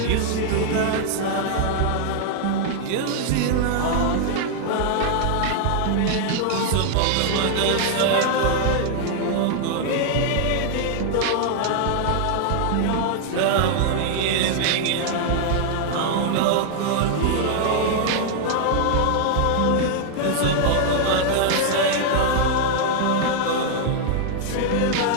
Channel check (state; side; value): different; both; correlation 0.00